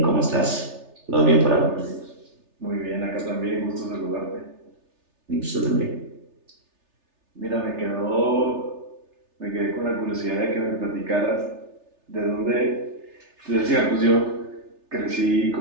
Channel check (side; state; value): left; late; 3.3 ms